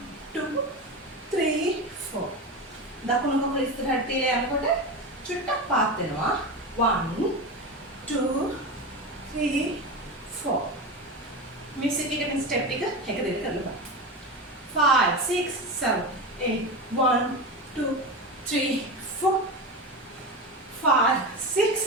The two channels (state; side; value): normal; both; correlation 0.22